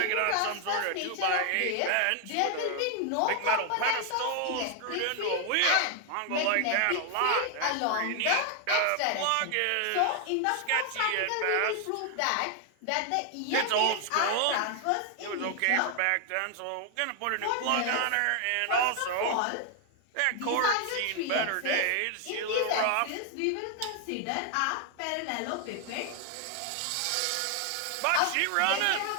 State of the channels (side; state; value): both; different; correlation 0.00